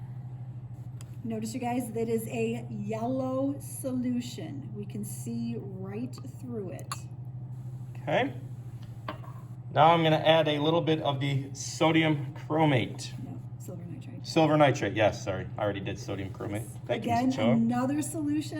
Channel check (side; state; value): both; identical; correlation 1.00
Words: Notice, you guys, that is a yellow solution. We can see right through it. Okay. Now I'm going to add a little bit of the sodium chromate. No, silver nitrate. Silver nitrate, yes, sorry. I already did sodium chromate. Thank you, Again, Ms. Ochoa. another